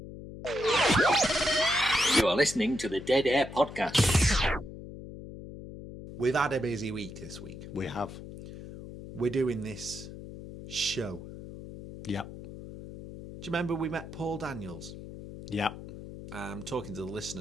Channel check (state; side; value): noise; left; hum, 12 dB below the sound